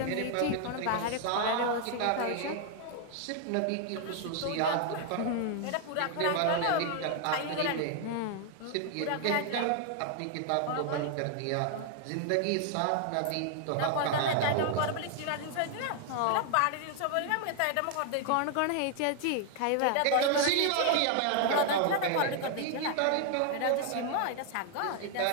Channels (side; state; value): both; different; correlation 0.00